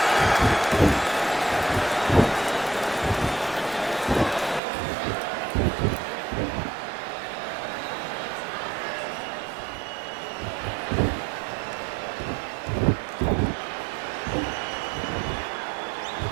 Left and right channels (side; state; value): left; drops out; at 4.6 s